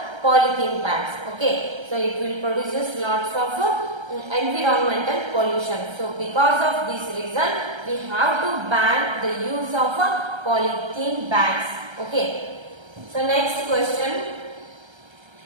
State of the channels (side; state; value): left; late; 1.3 ms